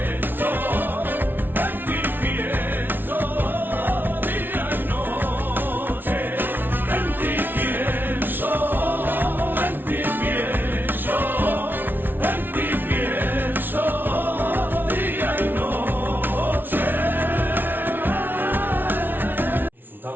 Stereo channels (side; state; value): left; late; 0.096 ms